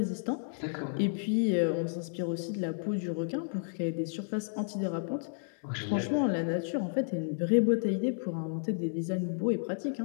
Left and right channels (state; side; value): silent; right; digital silence